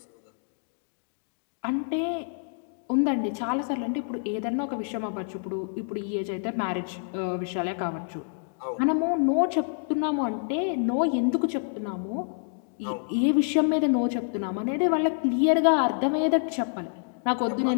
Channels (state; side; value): silent; right; digital silence